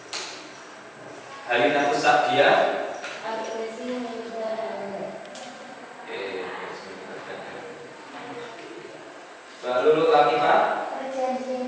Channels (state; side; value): identical; both; correlation 1.00